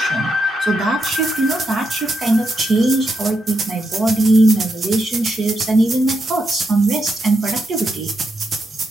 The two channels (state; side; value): normal; both; correlation 0.83